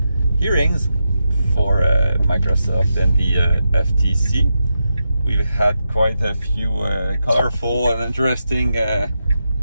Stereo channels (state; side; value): inverted; both; correlation -0.87